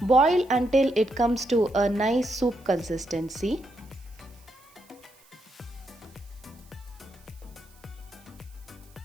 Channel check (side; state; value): right; noise; hiss, 28 dB below the sound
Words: Boil until it comes to a nice soup consistency.